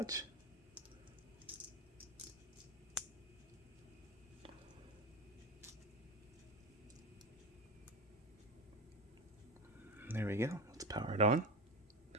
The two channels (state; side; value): normal; both; correlation 0.21